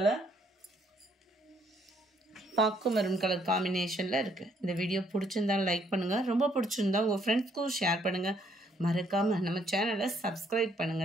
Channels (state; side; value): normal; both; correlation 0.68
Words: பாக்கு மெரூன் கலர் காம்பினேஷனில் இருக்குது. இந்த வீடியோ பிடிச்சிருந்தா லைக் பண்ணுங்கள். ரொம்ப பிடிச்சிருந்தா உங்கள் ஃப்ரெண்ட்ஸ்க்கும் ஷேர் பண்ணுங்கள். மறக்காமல் நம்ம சேனலை சப்ஸ்கிரைப்